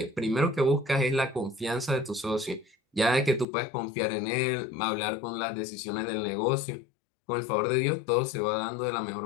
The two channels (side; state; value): right; drops out; at 3.5 s